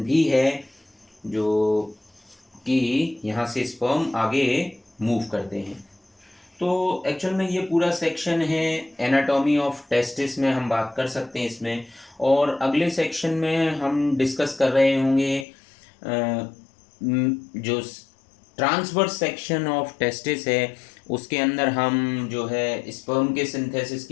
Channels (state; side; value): drops out; right; at 15.5 s